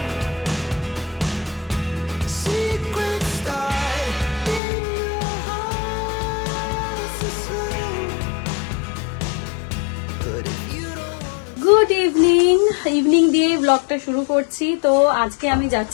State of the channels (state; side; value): drops out; right; at 4.6 s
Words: গুড ইভিনিং দিয়ে ব্লগটা শুরু করছি। তো আজকে আমি